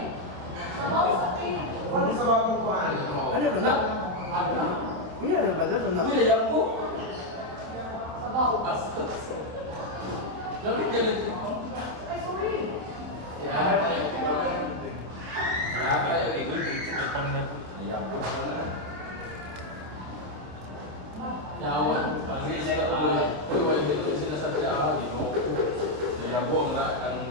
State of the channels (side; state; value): left; late; 27 ms